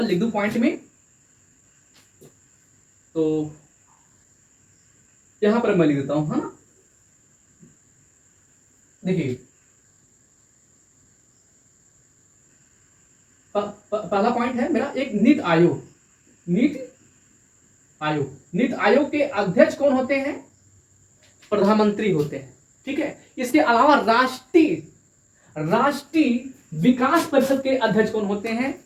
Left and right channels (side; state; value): both; identical; correlation 1.00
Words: लिख दूं पॉइंट में, तो यहां पर मैं लिख देता हूं, है ना। देखिए, पहला पॉइंट है मेरा एक नीति आयोग के अध्यक्ष कौन होते हैं? प्रधानमंत्री होते हैं। ठीक है। इसके अलावा राष्ट्रीय विकास परिषद के अध्यक्ष कौन होते हैं?